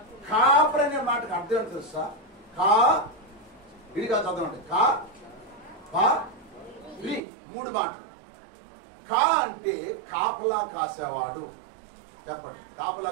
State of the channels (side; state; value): left; drops out; at 7.2 s